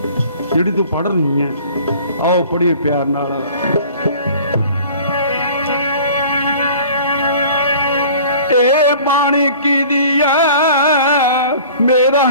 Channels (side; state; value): both; inverted; correlation -0.47